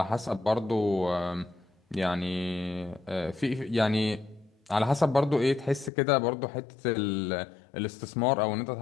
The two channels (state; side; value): drops out; right; at 5.9 s